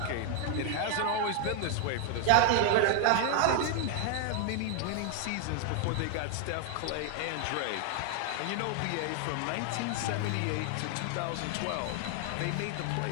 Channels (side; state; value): both; different; correlation 0.00